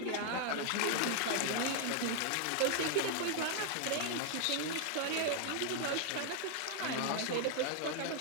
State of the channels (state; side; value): different; both; correlation 0.00